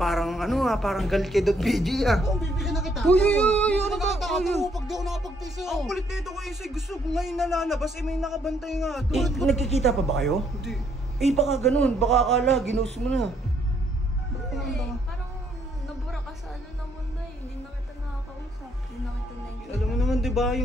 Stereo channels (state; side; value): normal; both; correlation 0.70